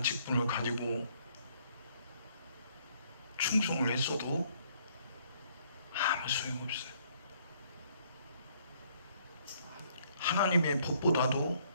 직분을 가지고 충성을 했어도 아무 소용없어요. 하나님의 법보다도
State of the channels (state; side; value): inverted; both; correlation -0.66